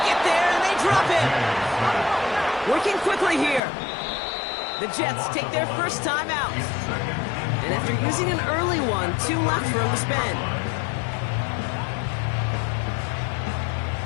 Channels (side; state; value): right; drops out; at 3.6 s